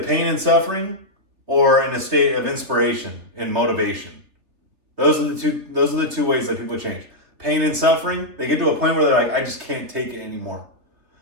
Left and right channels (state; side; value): late; left; 3.4 ms